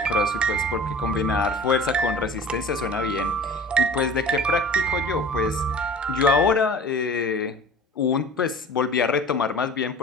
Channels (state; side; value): normal; both; correlation 0.41